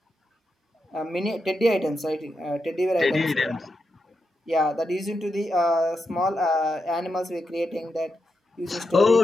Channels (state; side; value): normal; both; correlation 0.86